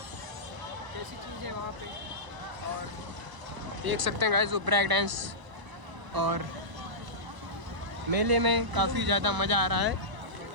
कैसी चीज़ है वहाँ पे, और देख सकते हैं गाइस वो ब्रेक डांस, और मेले में काफ़ी ज़्यादा मज़ा आ रहा है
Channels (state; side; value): late; left; 1.0 ms